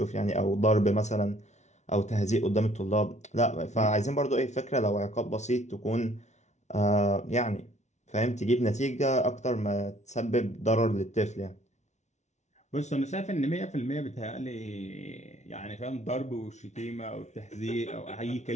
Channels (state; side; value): late; right; 0.33 ms